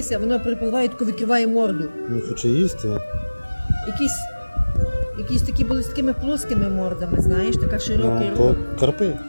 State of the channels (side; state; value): both; inverted; correlation -1.00